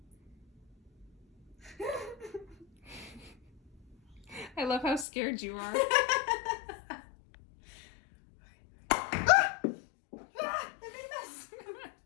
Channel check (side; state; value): right; drops out; at 5.1 s